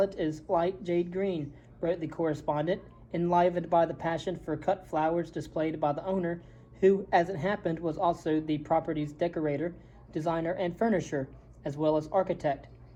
is light jade green, wrote the correspondent, enlivened by the passion for cut flowers displayed by the owner, who, as it happened, was also the property's decorator, designer, and furnisher, as well as architect.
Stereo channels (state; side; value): identical; both; correlation 1.00